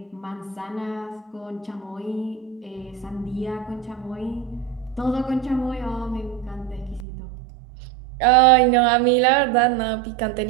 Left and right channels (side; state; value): left; drops out; at 7.1 s